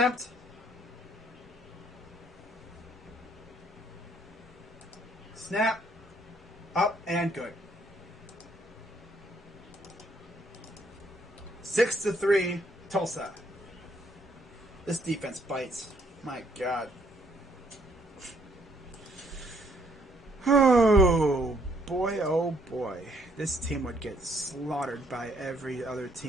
Snap. Up and good. 6-3, Tulsa. This defense bites. My God. Oh, boy, oh, boy. This team would get slaughtered by every other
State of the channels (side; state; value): both; normal; correlation 0.67